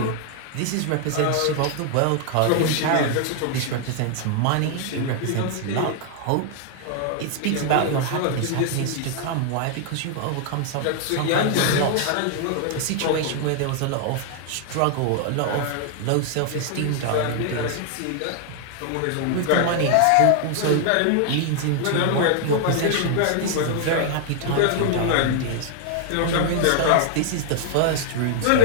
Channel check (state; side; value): different; both; correlation 0.00